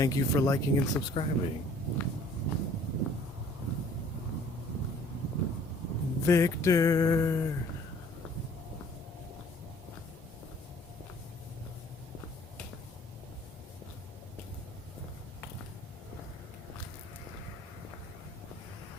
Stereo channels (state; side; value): normal; both; correlation 0.55